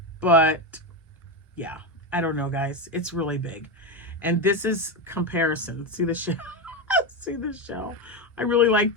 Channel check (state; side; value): normal; both; correlation 0.14